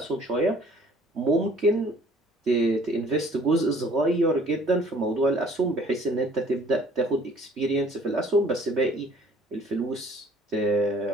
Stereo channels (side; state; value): both; normal; correlation 0.55